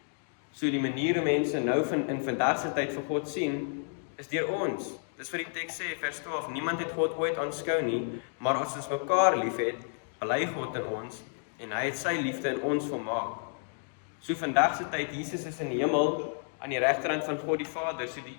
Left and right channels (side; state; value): right; silent; 57 dB below the other